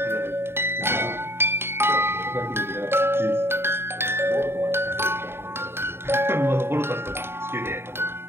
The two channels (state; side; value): late; left; 0.11 ms